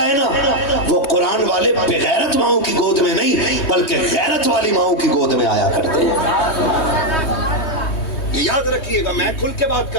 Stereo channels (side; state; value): right; late; 3.2 ms